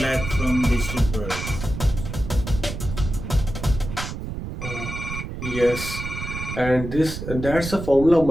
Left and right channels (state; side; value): noise; right; rumble, 7 dB below the sound